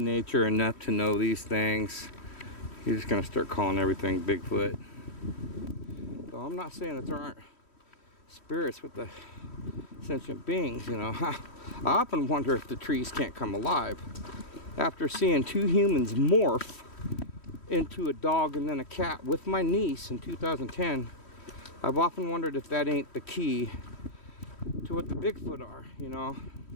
enough to know these things, you're just gonna start calling everything Bigfoot. So I'm not saying that there aren't spirits with the sentient beings, you know. I often wonder if the trees can't come alive. After seeing two humans morph into a dog and then a cat with my niece in 2010, I've often wondered if that ain't the key to what the Bigfoot are, you know.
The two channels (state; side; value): late; right; 3.1 ms